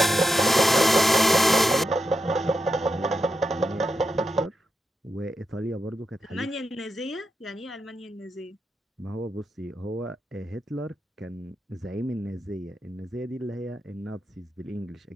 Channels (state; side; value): normal; both; correlation 0.86